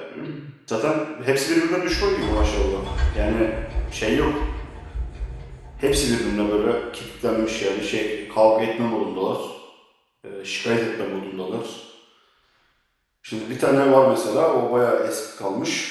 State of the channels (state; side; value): identical; both; correlation 1.00